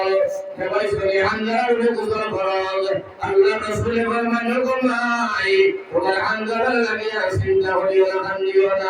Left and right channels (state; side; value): identical; both; correlation 1.00